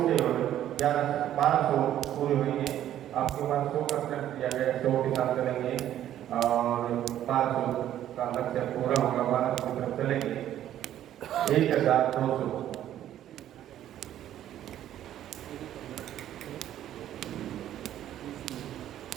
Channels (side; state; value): left; quieter; 11.8 dB